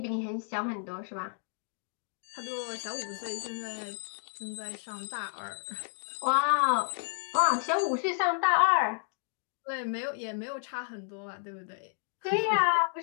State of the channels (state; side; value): silent; right; digital silence